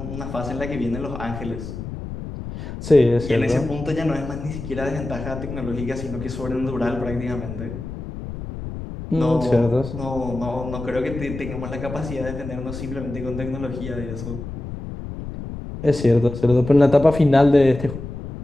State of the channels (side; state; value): left; noise; rumble, 9 dB below the sound